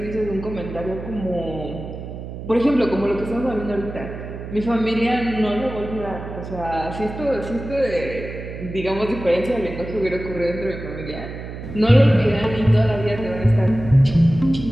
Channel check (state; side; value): noise; right; hum, 10 dB below the sound